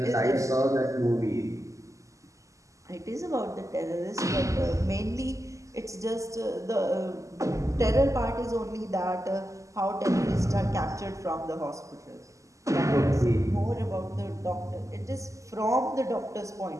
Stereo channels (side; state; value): left; late; 0.16 ms